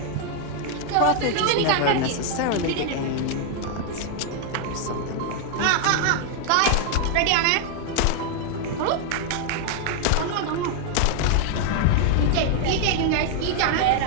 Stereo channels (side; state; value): both; different; correlation 0.00